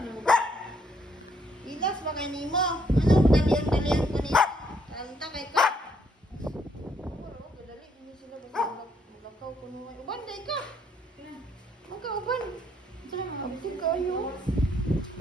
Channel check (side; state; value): both; normal; correlation 0.70